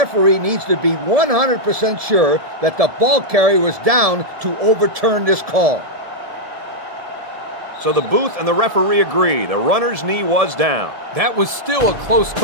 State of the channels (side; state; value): left; late; 1.7 ms